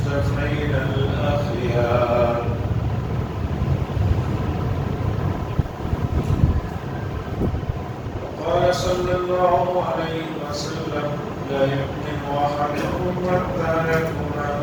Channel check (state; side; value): identical; both; correlation 1.00